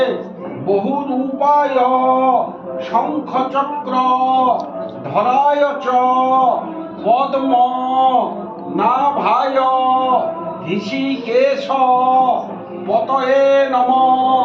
বহুরূপায় শঙ্খচক্র ধরায় চ পদ্ম নাভায় ঋষিকেশ পতয়ে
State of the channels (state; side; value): identical; both; correlation 1.00